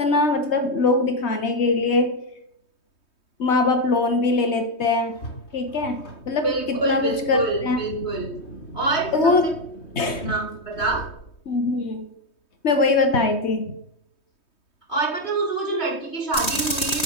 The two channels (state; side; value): late; right; 3.2 ms